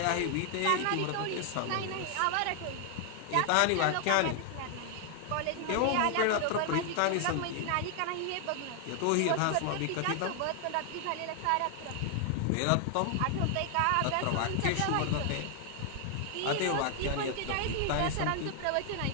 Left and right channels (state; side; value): different; both; correlation 0.00